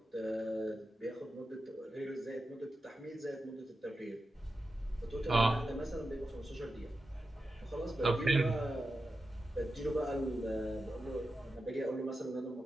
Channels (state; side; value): normal; both; correlation 0.91